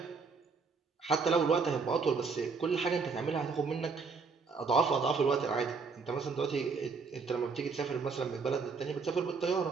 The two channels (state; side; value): quieter; left; 4.8 dB